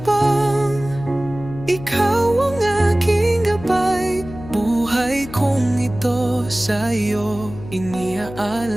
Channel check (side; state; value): left; noise; hum, 14 dB below the sound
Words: ikaw ang aking gabay. Buhay kong ito sa'yo